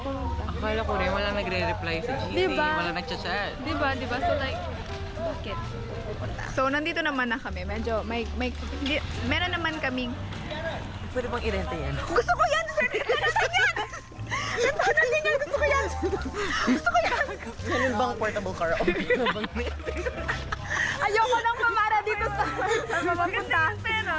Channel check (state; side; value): identical; both; correlation 1.00